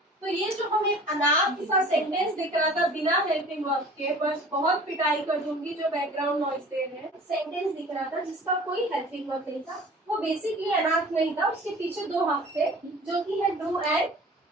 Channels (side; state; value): both; normal; correlation 0.45